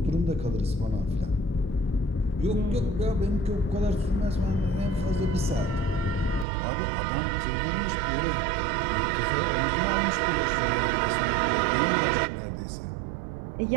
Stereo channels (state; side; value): drops out; left; at 6.5 s